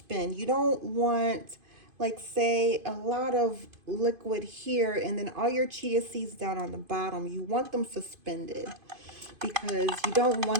You don't want, like, say, a lot of liquid here and then all your chia seeds down on the bottom. You want them suspended, because you don't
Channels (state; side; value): late; left; 2.5 ms